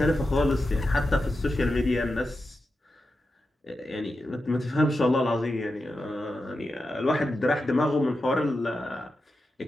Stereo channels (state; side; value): normal; both; correlation 0.90